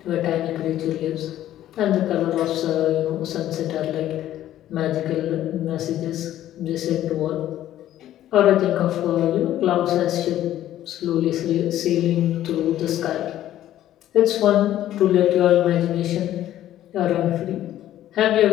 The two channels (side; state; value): right; quieter; 12.7 dB